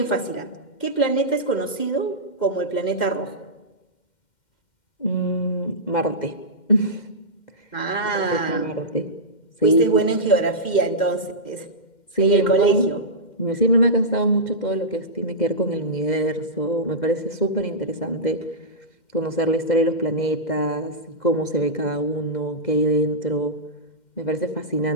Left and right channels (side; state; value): right; late; 2.1 ms